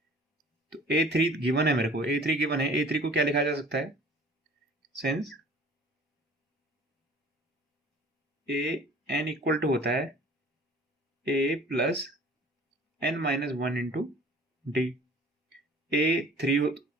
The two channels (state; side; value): normal; both; correlation 0.48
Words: तो A3 गिवन है मेरे को, A3 गिवन है, A3 को क्या लिखा जा सकता है since a n equal to होता है A प्लस n minus 1 into d. A3